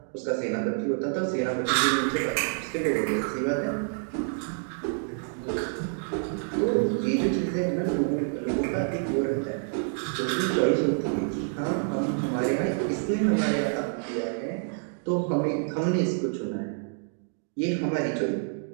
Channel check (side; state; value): left; silent; 60 dB below the other